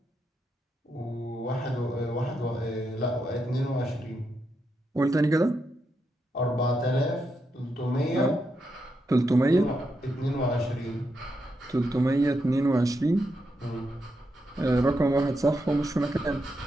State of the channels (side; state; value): both; normal; correlation 0.83